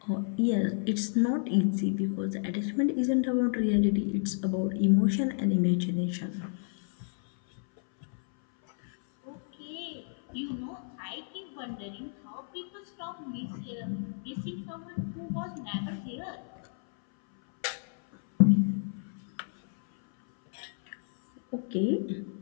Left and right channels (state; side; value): silent; right; 57 dB below the other